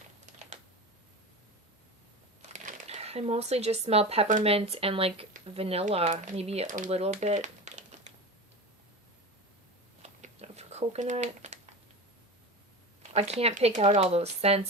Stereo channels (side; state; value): both; normal; correlation 0.28